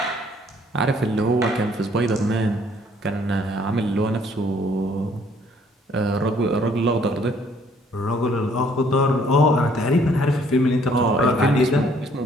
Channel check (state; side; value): normal; both; correlation 0.62